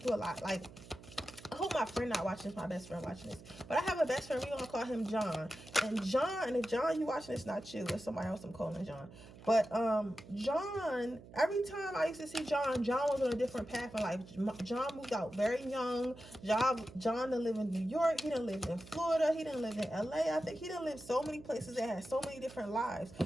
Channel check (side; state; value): right; noise; hum, 18 dB below the sound